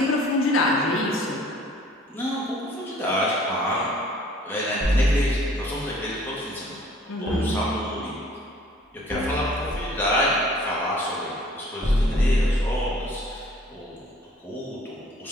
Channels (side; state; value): both; normal; correlation 0.54